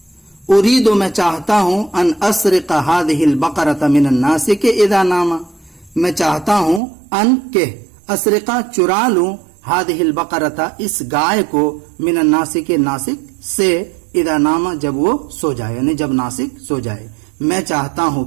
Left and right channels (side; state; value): left; drops out; at 6.8 s